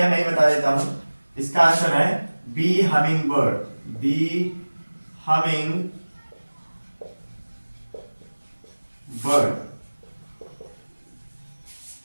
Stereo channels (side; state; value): both; inverted; correlation -1.00